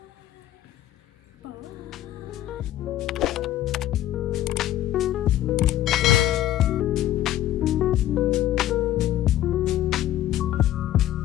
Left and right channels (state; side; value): quieter; right; 13.2 dB